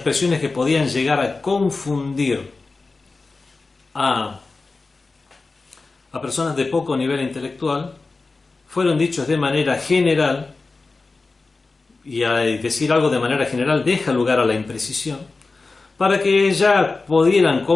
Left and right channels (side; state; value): right; quieter; 3.8 dB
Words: que podían llegar a confundir a personas de poco nivel intelectual, fueron dichos de manera general, y al decir algo de manera general deja lugar a la imprecisión, para que ya pudieran